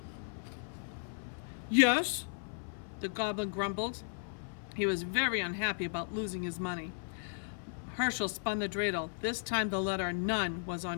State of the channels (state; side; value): silent; right; 54 dB below the other